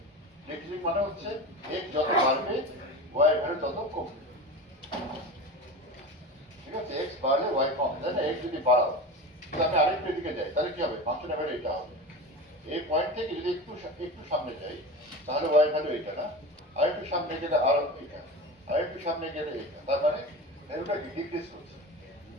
ডিক্রিজিং মানে হচ্ছে x যত বাড়বে y এর ভ্যালু তত কমবে, ঠিক আছে? x বাড়লে y কমবে, তাই না? x যদি বাড়াও, যদি আমি আরেকটু দিকে যাই, তাহলে কি হবে? ফাংশনের ভ্যালু এটা হবে। এই পয়েন্ট থেকে যদি একটু সামনে যাই, তাহলে y ভ্যালু এটা, না? আরেকটু সামনে গেলে আর এটা, আরেকটু সামনে গেলে এটা, তার মানে ভ্যালুটা ডিক্রিজ করছে।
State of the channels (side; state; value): both; normal; correlation 0.29